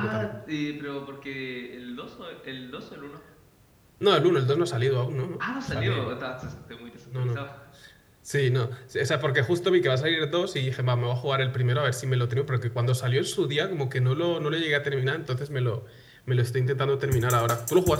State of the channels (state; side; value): identical; both; correlation 1.00